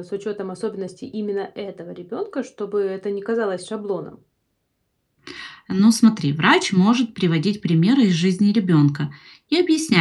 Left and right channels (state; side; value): identical; both; correlation 1.00